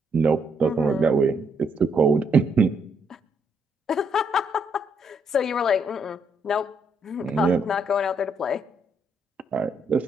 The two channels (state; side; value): normal; both; correlation 0.74